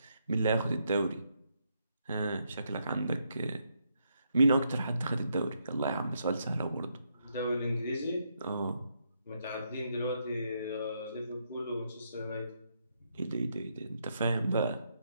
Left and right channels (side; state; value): both; inverted; correlation -0.78